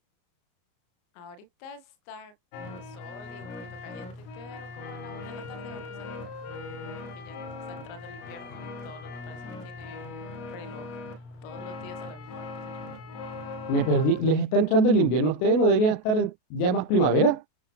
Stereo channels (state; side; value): late; right; 33 ms